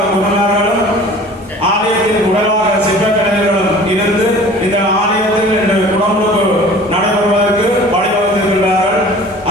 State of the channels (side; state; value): both; normal; correlation 0.45